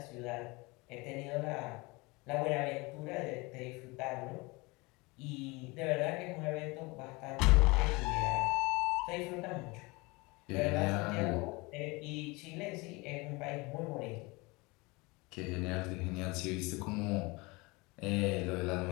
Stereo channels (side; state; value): right; quieter; 25.1 dB